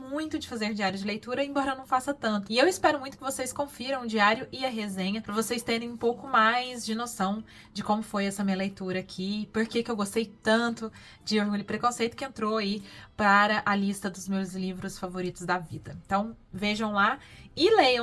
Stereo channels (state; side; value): identical; both; correlation 1.00